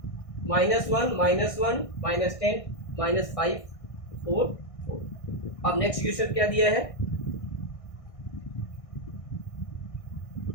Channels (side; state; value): right; late; 1.6 ms